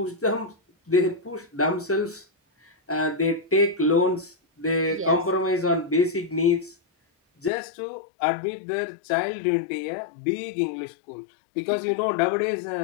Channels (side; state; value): right; drops out; at 7.5 s